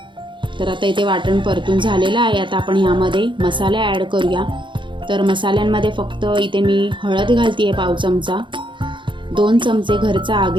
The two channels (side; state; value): left; late; 0.23 ms